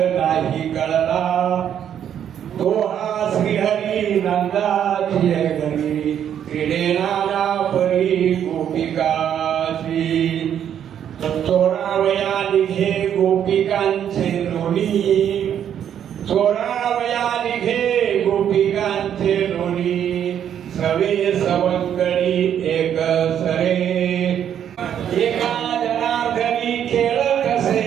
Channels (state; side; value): quieter; left; 9.4 dB